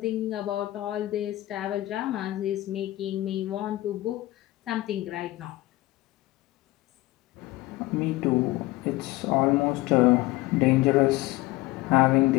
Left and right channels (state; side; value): quieter; right; 18.2 dB